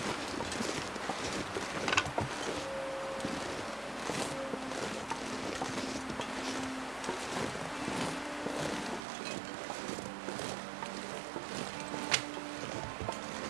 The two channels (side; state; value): left; drops out; at 9.0 s